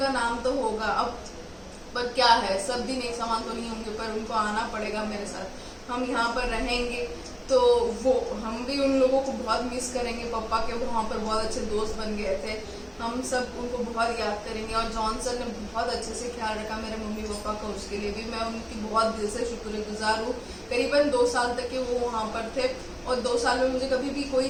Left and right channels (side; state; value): both; identical; correlation 1.00